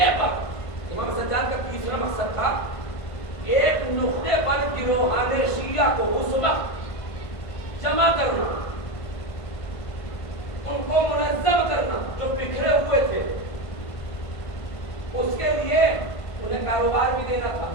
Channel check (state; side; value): late; right; 1.5 ms